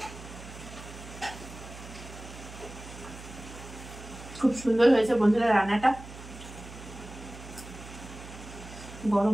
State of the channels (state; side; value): noise; right; hum, 14 dB below the sound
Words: খুব সুন্দর হয়েছে বন্ধুরা। রান্নাটা